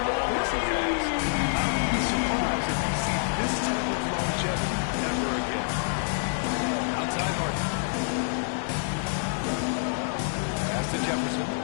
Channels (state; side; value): silent; right; 60 dB below the other